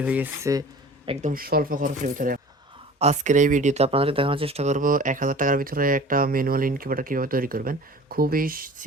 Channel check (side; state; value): both; normal; correlation 0.43